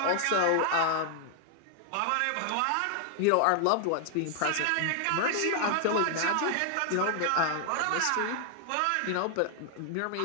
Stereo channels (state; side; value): different; both; correlation 0.00